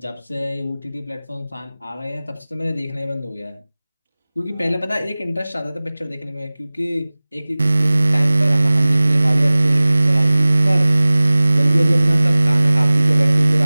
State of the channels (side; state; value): both; inverted; correlation -0.99